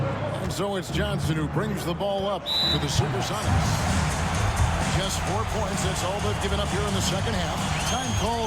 And so it's Johnson who brings the ball up for the SuperSonics. Just 4 points. That's all they've given up here in the second half. Time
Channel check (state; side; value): identical; both; correlation 1.00